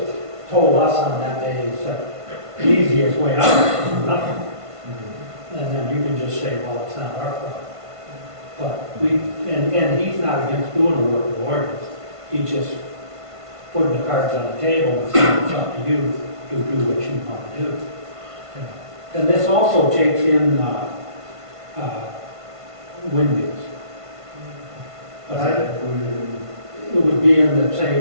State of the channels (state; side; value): late; left; 1.5 ms